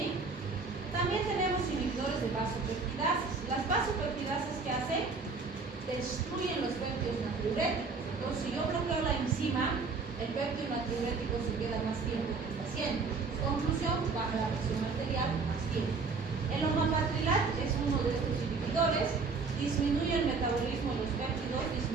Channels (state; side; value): quieter; left; 4.5 dB